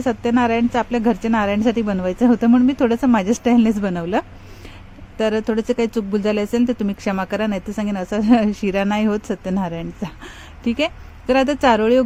सत्यनारायणचं आपल्या घरच्या नारायणसाठी बनवायचं होतं, म्हणून मी थोडंसं माझ्या स्टाईलनेच बनवलं. तर थोडंसं काही चूकभूल झाले असेल तर तुम्ही क्षमा करा, नाही तर सांगेन असा शिरा नाही होत सत्यनारायणचा. ठीक आहे. तर आता चारोळी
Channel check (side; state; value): both; identical; correlation 1.00